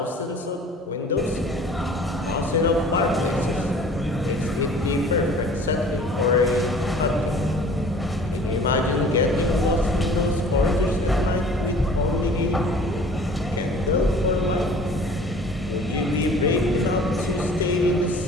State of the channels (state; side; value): normal; both; correlation 0.48